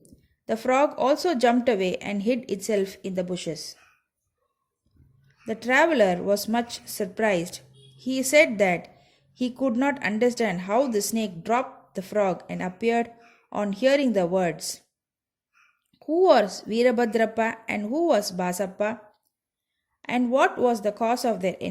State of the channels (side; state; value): both; identical; correlation 1.00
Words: The frog also jumped away and hid itself in the bushes. The traveler was much surprised. He said that he could not understand how the snake dropped the frog and appeared on hearing the words. Who was Virabhadrappa and who was Basappa? And what was the cause of their